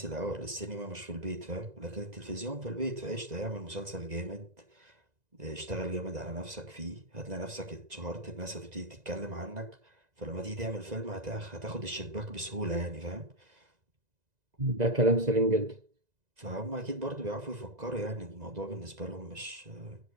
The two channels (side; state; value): left; late; 2.0 ms